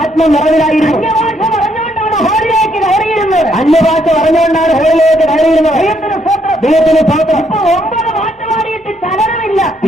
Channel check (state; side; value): normal; both; correlation 0.72